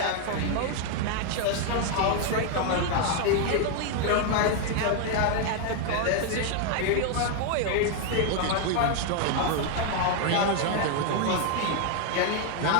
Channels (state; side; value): different; both; correlation 0.00